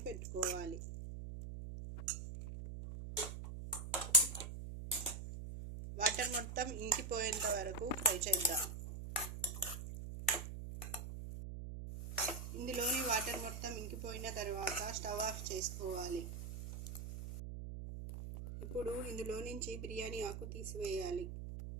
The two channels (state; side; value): noise; right; hum, 7 dB below the sound